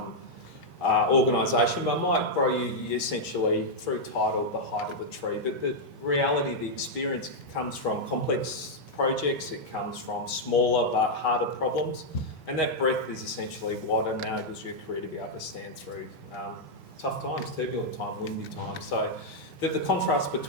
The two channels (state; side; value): normal; both; correlation -0.03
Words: organisation, but might grow you essentially through title, the height of the tree. But the reality, the experience comes from complex projects, it comes from smaller but harder problems, and that breadth is essentially what enables your career to be able to stand through tough times, turbulent time, windy time. So the contrast